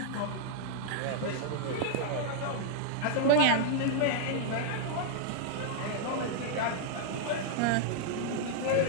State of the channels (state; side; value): different; both; correlation -0.01